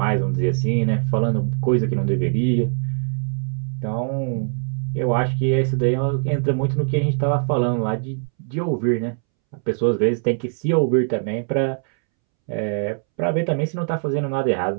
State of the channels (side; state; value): left; silent; 64 dB below the other